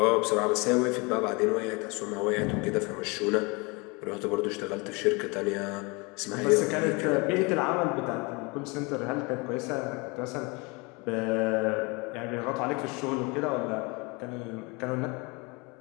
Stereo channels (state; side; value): quieter; right; 28.1 dB